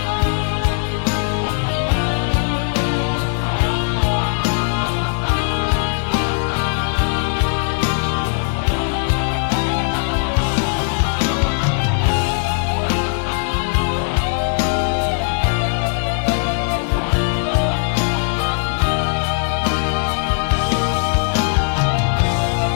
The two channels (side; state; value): right; silent; 67 dB below the other